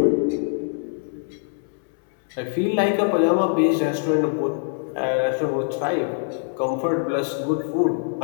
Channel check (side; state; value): right; silent; digital silence